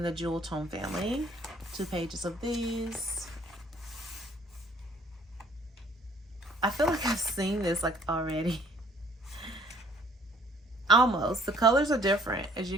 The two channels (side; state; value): both; normal; correlation 0.59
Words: the jewel tone family. 2 pages of these. I feel like I've seen this like already. Almost. The colors are different, as